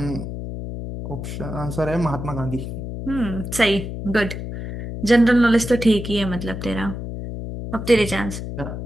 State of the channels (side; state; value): left; noise; hum, 7 dB below the sound